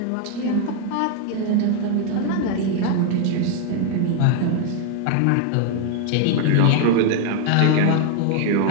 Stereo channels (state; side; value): different; both; correlation 0.00